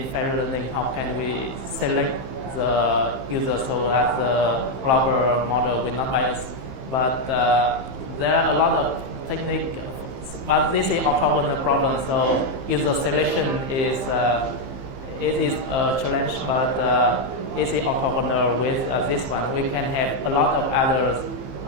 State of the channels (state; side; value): late; left; 15 ms